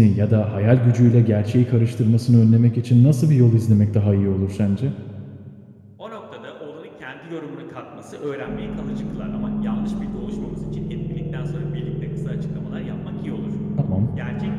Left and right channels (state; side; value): identical; both; correlation 1.00